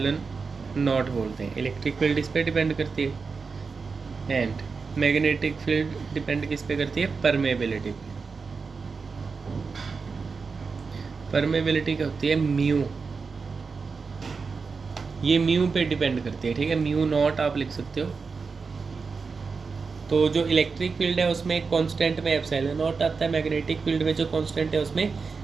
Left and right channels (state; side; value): quieter; left; 4.9 dB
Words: नॉट बोलते हैं। इलेक्ट्रिक फील्ड इस पे डिपेंड करती है एंड मैग्नेटिक फील्ड डिपेंड किस पे करती है? परमेबिलिटी पे। परमेबिलिटी क्या होती है? म्यू। ये म्यू पे डिपेंड करती है, ठीक है। म्यू नॉट आप लिख सकते हो। तो जो इलेक्ट्रिक फील्ड है उसमें कांस्टेंट में एप्सिलॉन नॉट आता है, मैग्नेटिक फील्ड में जो कांस्टेंट है उसमें